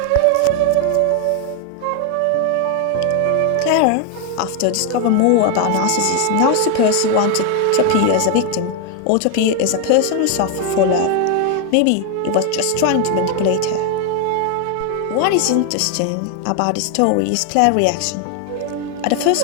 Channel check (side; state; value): both; different; correlation 0.01